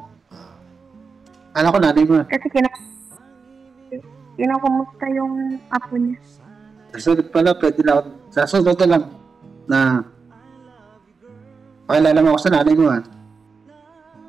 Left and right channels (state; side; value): quieter; left; 5.0 dB